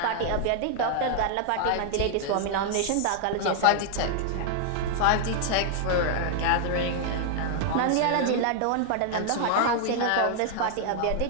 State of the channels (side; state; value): both; different; correlation 0.00